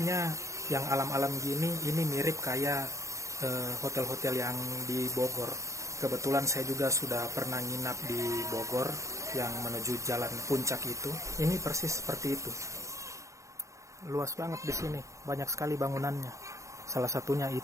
yang alam-alam gini, ini mirip kayak hotel-hotel yang di Bogor. Kebetulan saya juga sudah pernah nginap di Bogor yang menuju jalan puncak itu. Ini persis seperti itu. Luas banget di sini, banyak sekali bangunannya. Salah satunya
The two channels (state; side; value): late; left; 0.15 ms